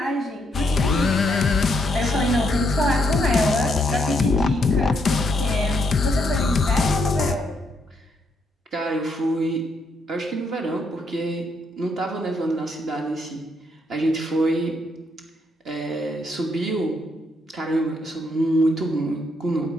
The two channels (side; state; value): both; normal; correlation 0.75